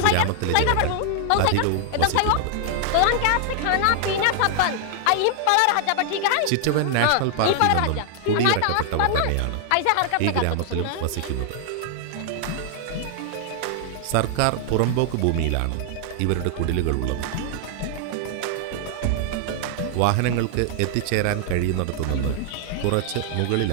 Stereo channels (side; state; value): both; different; correlation 0.00